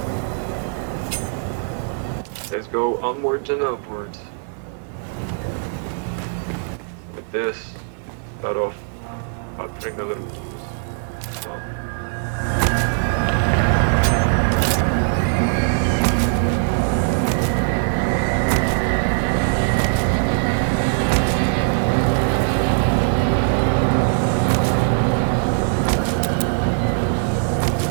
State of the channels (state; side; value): silent; left; digital silence